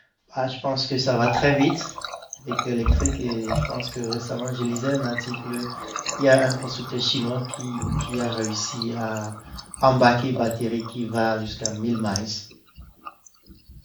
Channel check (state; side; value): identical; both; correlation 1.00